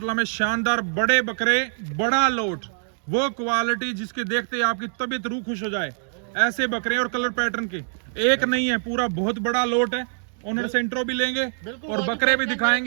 में शानदार बड़े बकरे, बड़ा लोट, वो क्वालिटी जिसके देखते ही आपकी तबीयत रूह खुश हो जाए। ऐसे बकरे और कलर पैटर्न के एक नहीं है, पूरा बहुत बड़ा लोट है। ओनर से इंट्रो भी लेंगे और बकरे भी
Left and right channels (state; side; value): silent; left; digital silence